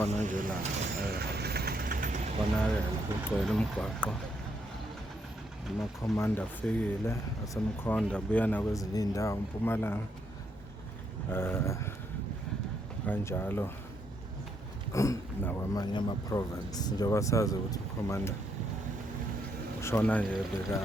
nje la bonakele kugcwele umgwaqo. Amakhomanda afikile asemkhonda abuya nakwezinye indawo eMpumalanga kanjalo nakwamanye ama-province. Njengoba sazi ukuthi ukhomanda ushona nje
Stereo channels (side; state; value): both; normal; correlation 0.75